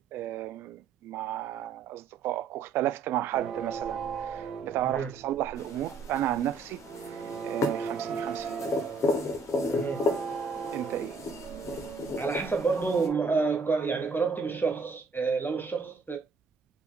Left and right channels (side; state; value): left; quieter; 4.2 dB